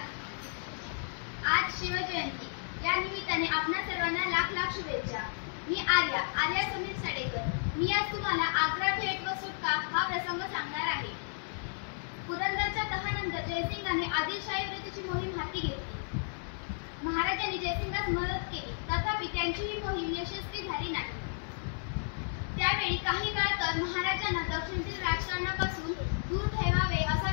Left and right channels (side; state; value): right; silent; digital silence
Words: आज शिवजयंती या निमित्ताने आपणा सर्वांना लाख लाख शुभेच्छा। मी आर्या समीर साडेकर। मी आज तुम्हाला आग्रा भेट व सुटका हा प्रसंग सांगणार आहे। पुरंदरच्या तहानंतर जयसिंगाने आदिलशाही विरुद्धची मोहीम हाती घेतली। महाराजांनी जयसिंगास मदत केली, तथापि त्यांची ही मोहीम यशस्वी झाली नाही। त्यावेळी काही काळ तर महाराजांना दक्षिणेतील राजकारणापासून दूर ठेवावे असा